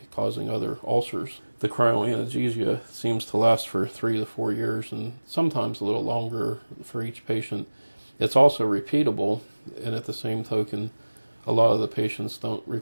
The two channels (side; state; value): both; inverted; correlation -1.00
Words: causing other ulcers. The cryoanesthesia seems to last for 3 to 4 years and sometimes a little longer for each patient. It's also repeatable, and at the same token, a lot of the patients don't